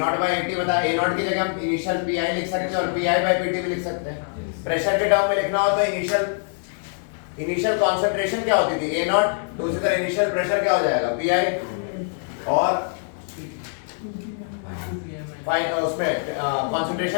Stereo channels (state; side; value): silent; right; 63 dB below the other